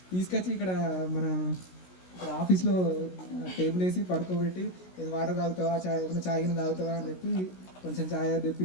తీసుకొచ్చి ఇక్కడ మన ఆఫీస్లో టేబుల్ వేసి పడుకోబెట్టి ఏదో వాటర్ తాగుతావా, ఏమైనా చాయ్ గిన్నె తాగుతావా అని చెప్పి కొంచెం ఛాయ్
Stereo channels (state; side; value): late; right; 16 ms